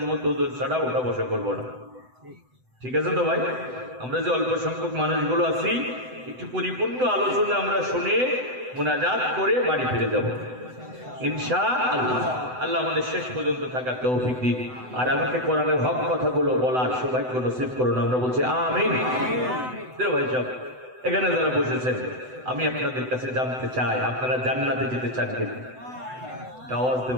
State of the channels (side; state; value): left; late; 7.9 ms